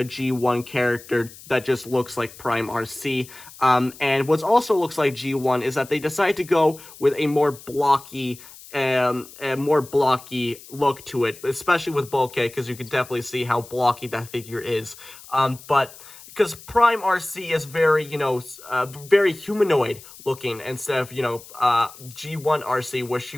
G1 character that just looks like Prime Arcee. And what also looks like G1 is that they decided to go with a more blocky look to it, especially with Bulkhead, because you can definitely see how blocky that figure is. But because Prime Arcee is very, very humanoid looking, instead of, G1 Arcee, where she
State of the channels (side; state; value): left; noise; hiss, 19 dB below the sound